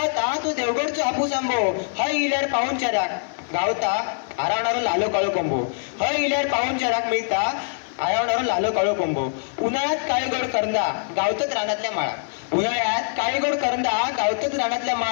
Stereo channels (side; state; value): right; silent; digital silence